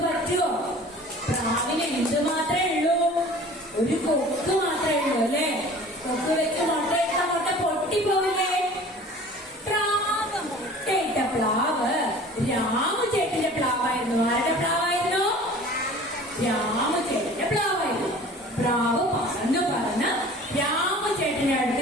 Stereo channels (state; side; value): normal; both; correlation 0.44